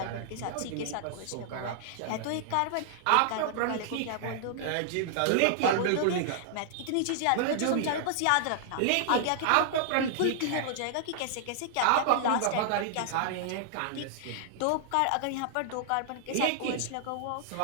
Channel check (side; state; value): both; different; correlation -0.01